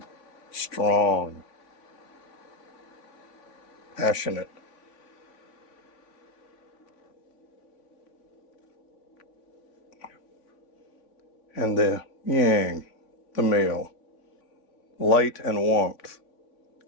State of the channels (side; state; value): right; late; 3.5 ms